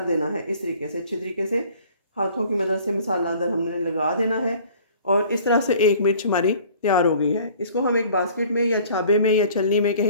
देना है इस तरीके से, अच्छी तरीके से हाथों की मदद से मसाला अंदर हमने लगा देना है। और इस तरह से एक मिर्च हमारी तैयार हो गई है। इसको हम एक बास्केट में या छाबे में या छलनी में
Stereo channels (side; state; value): both; inverted; correlation -0.51